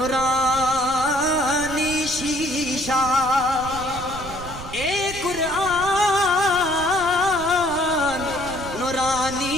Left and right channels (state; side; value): noise; right; rumble, 12 dB below the sound